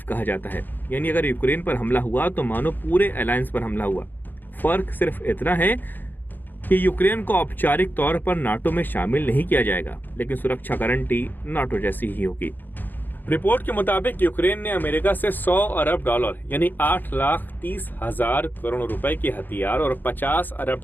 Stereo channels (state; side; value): late; right; 0.087 ms